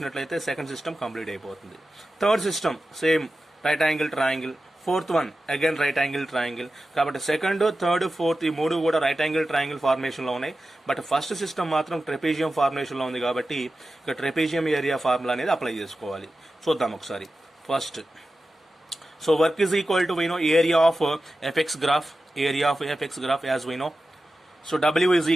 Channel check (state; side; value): normal; both; correlation 0.93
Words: సెకండ్ సిస్టమ్ కంప్లీట్ అయిపోతుంది. Third system same right angle triangle. Fourth one again right angle triangle. కాబట్టి సెకండ్, థర్డ్, ఫోర్త్ ఈ మూడు కూడా రైట్ యాంగిల్ ట్రయాంగిల్ ఫార్మేషన్ లో ఉన్నాయి. బట్ ఫస్ట్ సిస్టమ్ మాత్రం ట్రెపేజియం ఫార్మేషన్ లో ఉంది కాబట్టి ఇక ట్రెపేజియం ఏరియా ఫార్ములా అనేది అప్లై చేసుకోవాలి. చూద్దాం ఒకసారి. First so work is equal to area of F x graph as we know. So W is